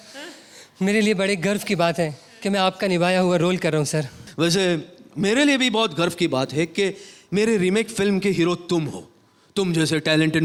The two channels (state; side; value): identical; both; correlation 1.00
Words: मेरे लिए बड़े गर्व की बात है कि मैं आपका निभाया हुआ रोल कर रहा हूँ सर। वैसे मेरे लिए भी बहुत गर्व की बात है कि मेरे रीमेक फिल्म के हीरो तुम हो। तुम जैसे टैलेंटेड